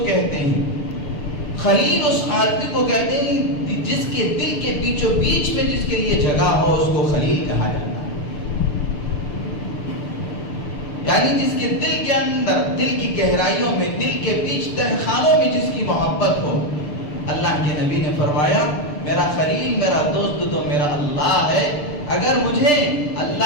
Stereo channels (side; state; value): right; late; 6.8 ms